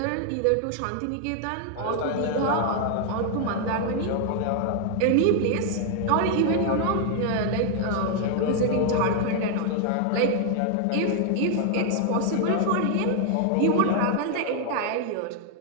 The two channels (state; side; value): different; both; correlation 0.00